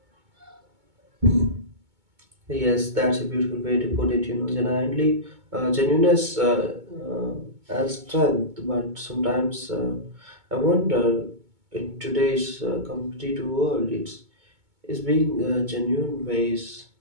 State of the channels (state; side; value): late; left; 2.2 ms